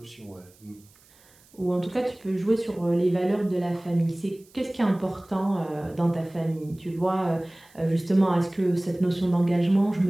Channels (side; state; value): right; noise; hiss, 29 dB below the sound